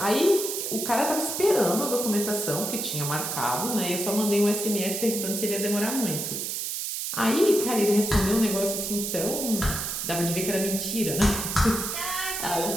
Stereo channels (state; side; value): noise; right; hiss, 3 dB below the sound